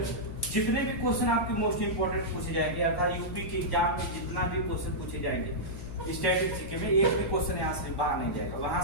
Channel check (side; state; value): left; noise; hum, 9 dB below the sound